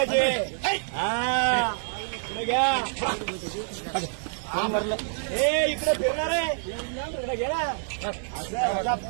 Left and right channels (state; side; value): silent; left; 60 dB below the other